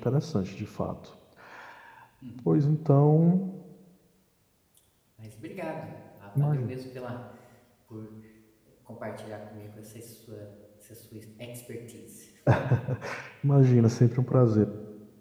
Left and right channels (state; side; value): identical; both; correlation 1.00